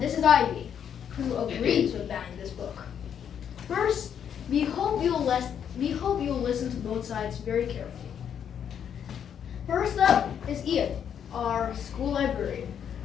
this is Ivy, who agrees with banning this book. First, we hope you'll listen to both sides very carefully. First up is Ian, our school librarian.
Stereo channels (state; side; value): quieter; right; 8.5 dB